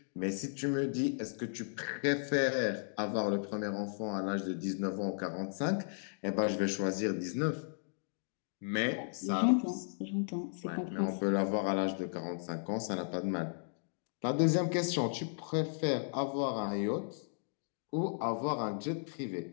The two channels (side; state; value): right; silent; digital silence